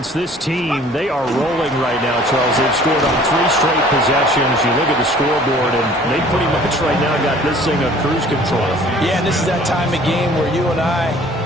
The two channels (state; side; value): normal; both; correlation 0.52